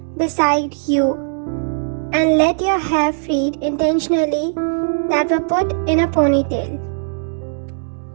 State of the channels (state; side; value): silent; left; digital silence